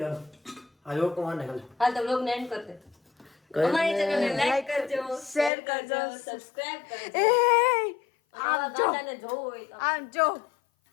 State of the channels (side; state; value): right; drops out; at 5.5 s